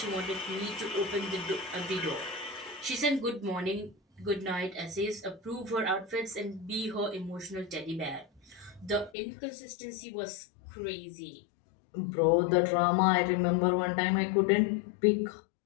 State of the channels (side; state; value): right; drops out; at 9.1 s